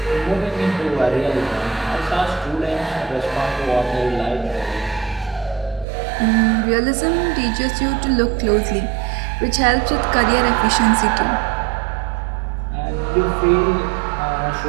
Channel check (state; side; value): drops out; left; at 5.9 s